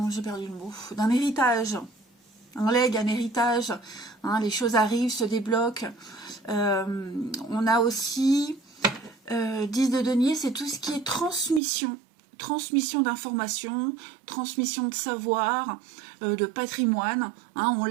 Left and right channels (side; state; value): left; drops out; at 11.6 s